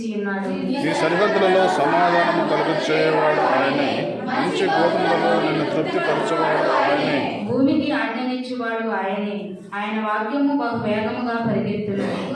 ఉన్నాడు. నీ సరిహద్దులలో సమాధానము కలుగచేయవాడు ఆయనే, మంచి గోధుమలలో నిన్ను తృప్తిపరచువాడు ఆయనే. భూమికి ఆజ్ఞనిచ్చువాడు ఆయనే, ఆయన వాక్యము బహు వేగముగా పరిగెత్తును.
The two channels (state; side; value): identical; both; correlation 1.00